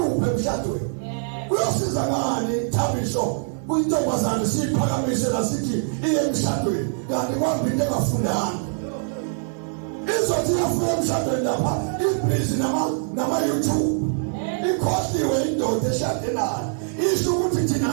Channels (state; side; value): silent; left; 59 dB below the other